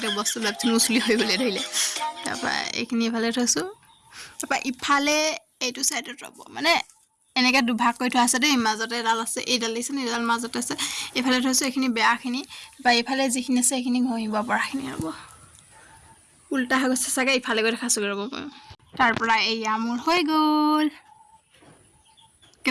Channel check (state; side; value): identical; both; correlation 1.00